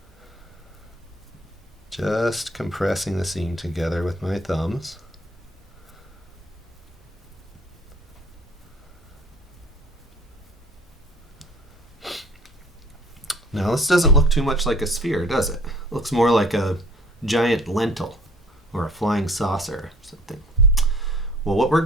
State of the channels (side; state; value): both; normal; correlation 0.54